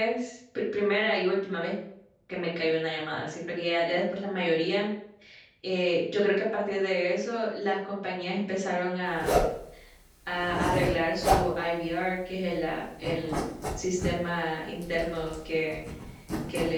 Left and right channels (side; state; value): both; identical; correlation 1.00